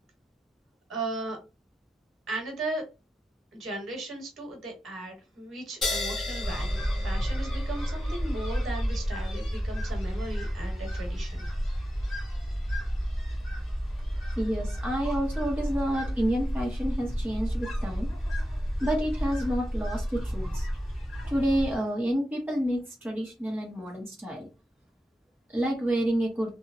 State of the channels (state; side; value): normal; both; correlation 0.90